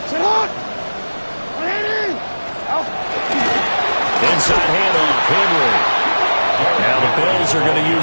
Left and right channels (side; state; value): both; inverted; correlation -1.00